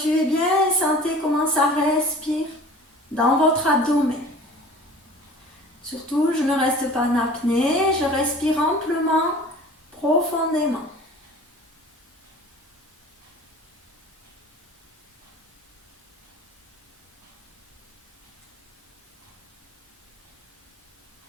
bien et sentez comment ça respire dans votre abdomen. Surtout, je ne reste pas en apnée, je respire amplement, profondément.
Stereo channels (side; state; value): both; normal; correlation 0.43